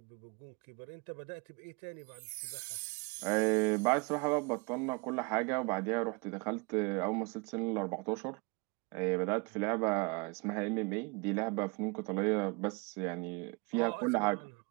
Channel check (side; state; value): left; quieter; 29.6 dB